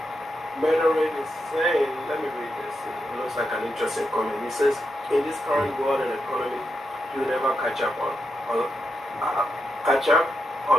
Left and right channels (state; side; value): normal; both; correlation 0.85